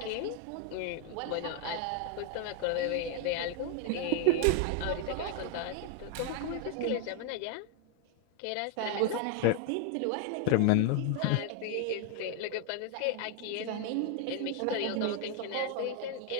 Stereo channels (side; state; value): both; different; correlation 0.00